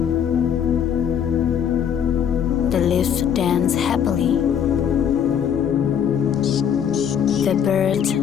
The leaves danced happily. The birds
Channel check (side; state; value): right; quieter; 8.4 dB